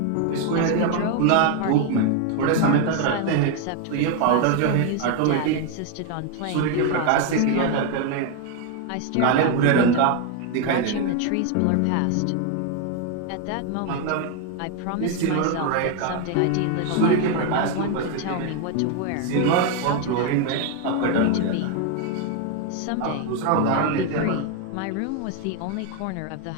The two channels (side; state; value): both; different; correlation 0.01